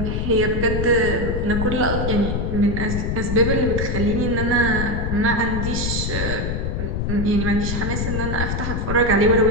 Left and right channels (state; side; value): noise; left; rumble, 1 dB below the sound